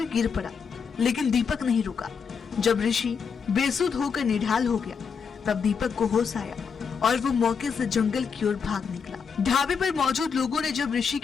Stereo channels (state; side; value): quieter; right; 6.1 dB